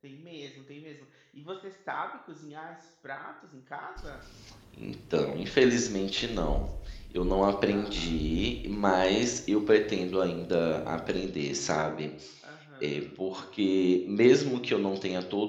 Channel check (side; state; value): both; identical; correlation 1.00